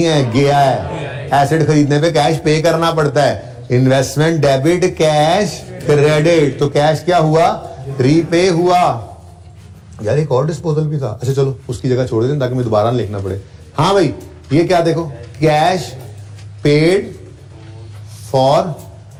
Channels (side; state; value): both; identical; correlation 1.00